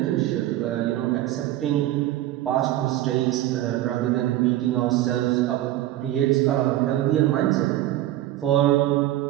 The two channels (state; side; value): quieter; left; 14.3 dB